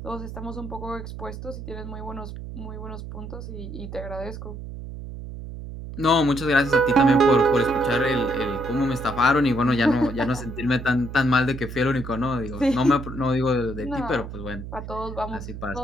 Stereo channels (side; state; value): right; noise; hum, 10 dB below the sound